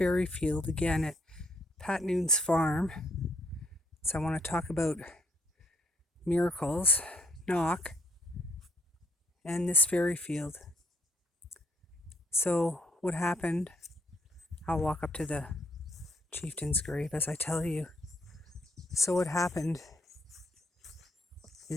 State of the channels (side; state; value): both; normal; correlation 0.70